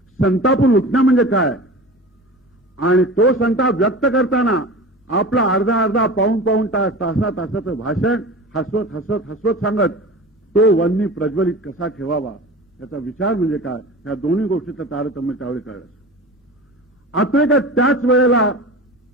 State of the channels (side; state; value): both; normal; correlation 0.34